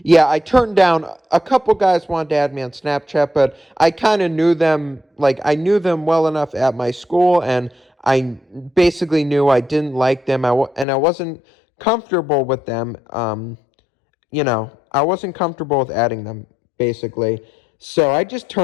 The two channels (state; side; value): drops out; right; at 10.9 s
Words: yeah, I turned down a couple guys wanted to add me on Snapchat, but I kind of knew them, like I knew them well enough at my school, and I basically knew I didn't like them. And I wasn't comfortable with them. I wasn't comfortable with adding them basically. So I